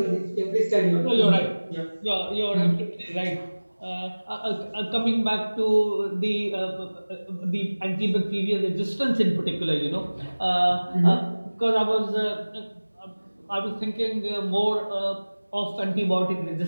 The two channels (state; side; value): inverted; both; correlation -1.00